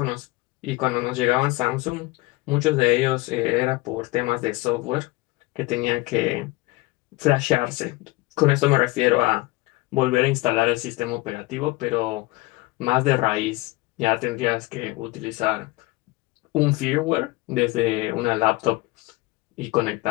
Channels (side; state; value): right; quieter; 21.1 dB